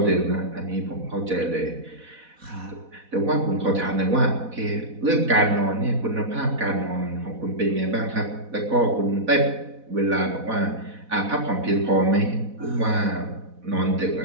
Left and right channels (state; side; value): late; left; 4.1 ms